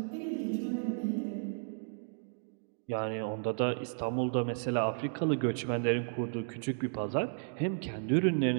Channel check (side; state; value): left; silent; digital silence